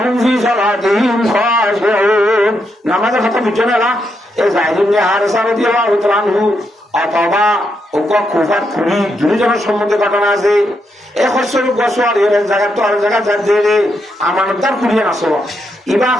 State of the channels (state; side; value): normal; both; correlation 0.81